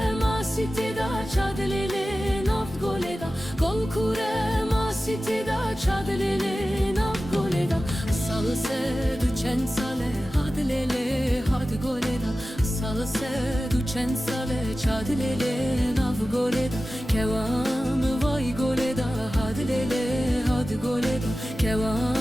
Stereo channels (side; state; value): both; normal; correlation 0.95